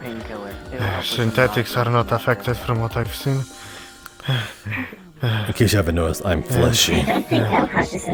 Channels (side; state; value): both; identical; correlation 1.00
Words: Synthetics are not affected from what I've seen. In case you haven't noticed, I'm fleshy.